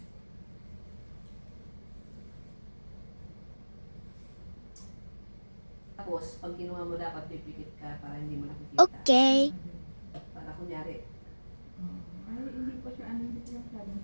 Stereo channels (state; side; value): inverted; both; correlation -1.00